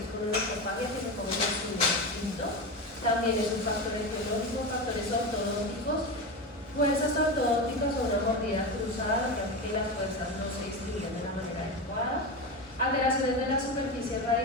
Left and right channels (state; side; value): normal; both; correlation 0.20